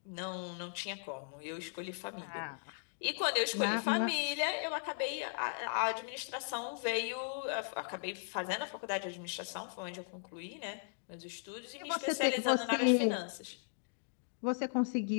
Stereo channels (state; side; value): silent; right; digital silence